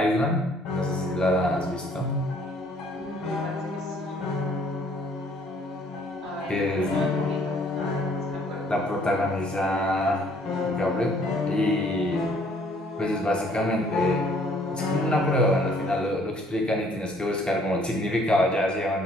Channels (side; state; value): both; normal; correlation 0.61